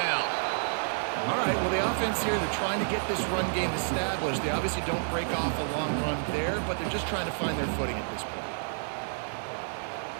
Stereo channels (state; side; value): silent; left; 58 dB below the other